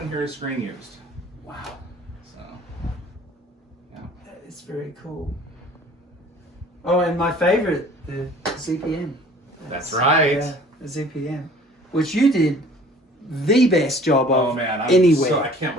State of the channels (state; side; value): normal; both; correlation 0.50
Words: here is screen used. Wow. So yeah. That is very cool. Oh, and my favorite, the ZPM. That's right. Yeah, the ZPM. which you did the best job of Oh man, anywhere. so I can't